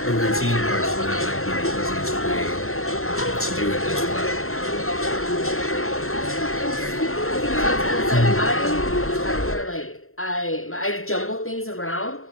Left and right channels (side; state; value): right; late; 0.62 ms